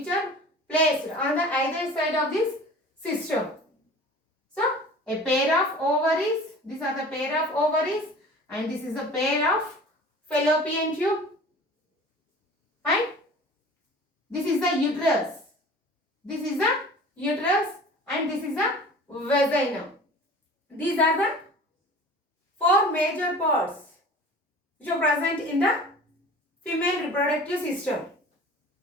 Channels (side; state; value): both; normal; correlation 0.42